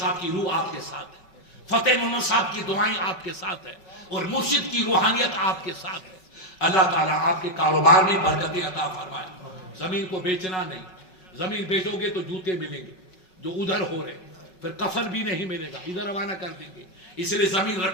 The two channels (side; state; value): right; late; 5.4 ms